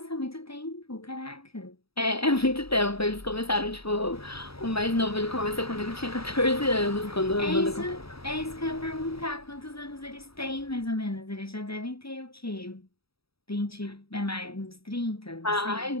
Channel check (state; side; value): late; right; 0.77 ms